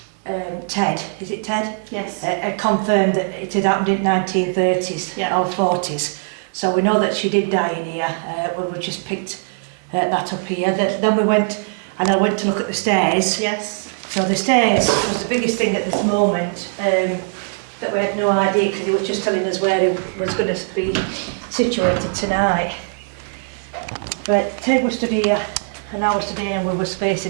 Ted, is it Ted? Yes. Had confirmed that it had happened in 1930s or 40s. So we know that she did die in here. We just picked that up here. Then we went, and I went to look at the stairs. Yes. So the stairs was the biggest thing at this moment, that we had no idea, because he was just telling us where it was going to be situated tonight. But Ted was stood here, and I was stood here, and we were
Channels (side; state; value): left; silent; 62 dB below the other